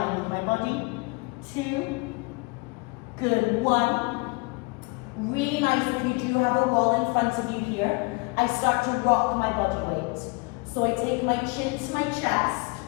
with my body. 2. Good. 1. Really nice if you do have a wall in front of you here. I start to rock my body weight. So I take my chin to my chest.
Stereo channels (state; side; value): quieter; right; 27.4 dB